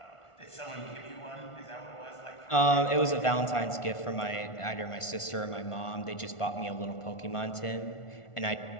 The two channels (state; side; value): late; right; 1.5 ms